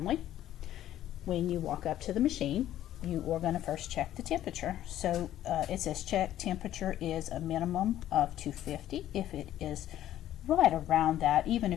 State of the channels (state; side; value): quieter; right; 12.6 dB